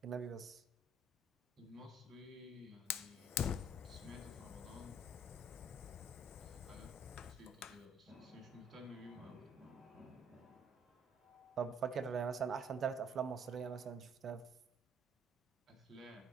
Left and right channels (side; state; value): both; normal; correlation 0.62